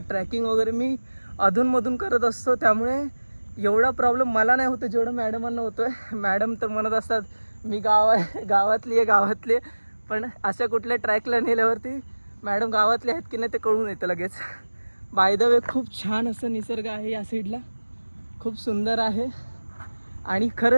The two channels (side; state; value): both; inverted; correlation -1.00